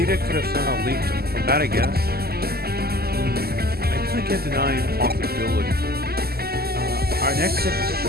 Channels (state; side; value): late; left; 0.46 ms